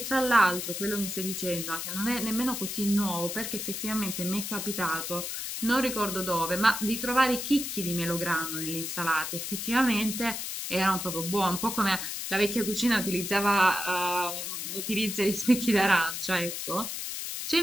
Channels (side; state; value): left; noise; hiss, 5 dB below the sound